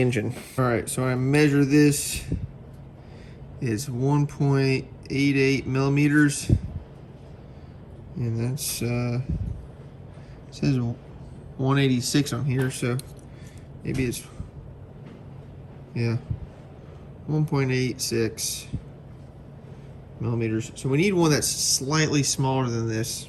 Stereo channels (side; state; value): both; identical; correlation 1.00